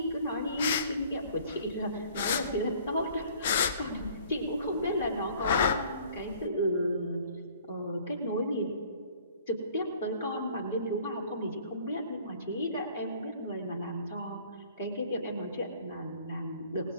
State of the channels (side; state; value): both; inverted; correlation -0.53